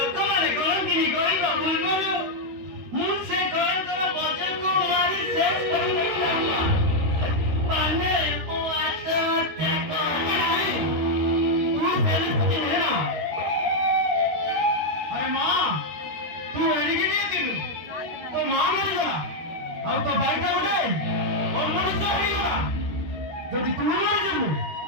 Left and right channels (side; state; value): left; late; 13 ms